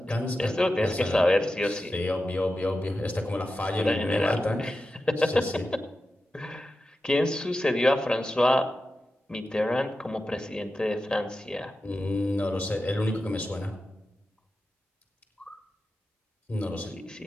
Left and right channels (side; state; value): both; normal; correlation 0.92